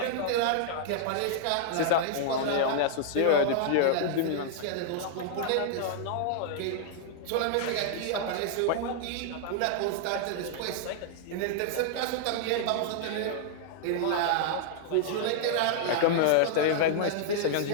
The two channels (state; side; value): different; both; correlation -0.01